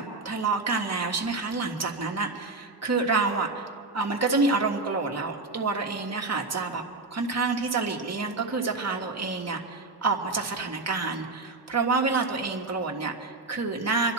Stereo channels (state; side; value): quieter; left; 3.5 dB